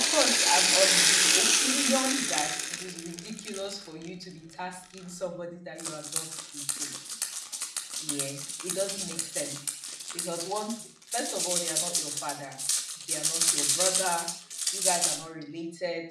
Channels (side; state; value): both; identical; correlation 1.00